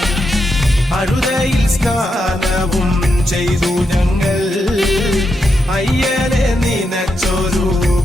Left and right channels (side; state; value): both; normal; correlation 0.84